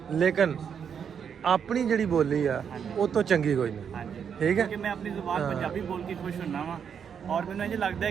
ਲੇਕਿਨ ਆਪਣੀ ਜਿਹੜੀ ਬੋਲੀ ਆ ਉਹ ਤੋਂ ਚੰਗੀ ਕੋਈ ਨਹੀਂ। ਠੀਕ ਹੈ, ਕਿ ਮੈਂ ਆਪਣੀ ਜ਼ੁਬਾਨ ਪੰਜਾਬੀ ਬੋਲ ਕੇ ਖੁਸ਼ ਹੁੰਨਾ ਵਾਂ ਔਰ ਮੈਨੂੰ ਇਹ ਲੱਗਦਾ ਹੈ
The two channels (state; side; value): quieter; left; 7.5 dB